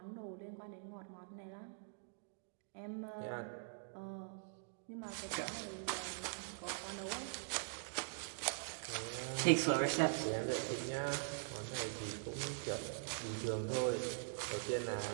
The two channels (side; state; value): left; silent; digital silence